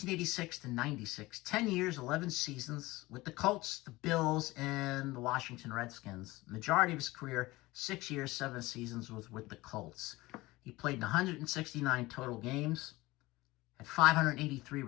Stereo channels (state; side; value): quieter; right; 20.1 dB